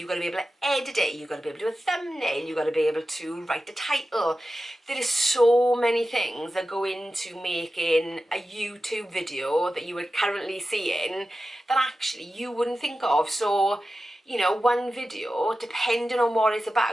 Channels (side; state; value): both; normal; correlation 0.93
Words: got to be able to edit it, you've got to be able to do a thumbnail, you've got to be able to write the title. There is so many things that go into making a YouTube video that you are currently seeing that actually you wouldn't think of. So you know, one video, depending on what it's